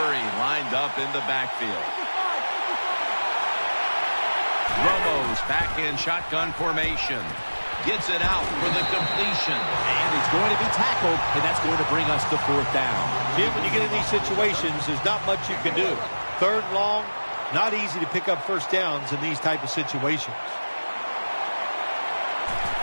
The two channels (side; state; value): both; inverted; correlation -1.00